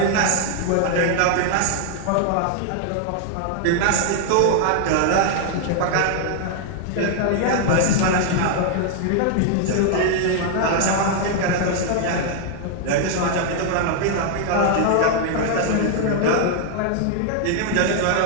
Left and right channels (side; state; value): both; different; correlation 0.00